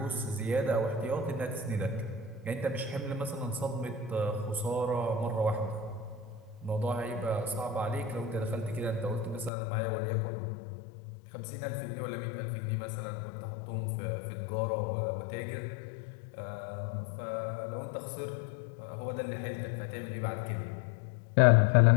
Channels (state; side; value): drops out; right; at 9.5 s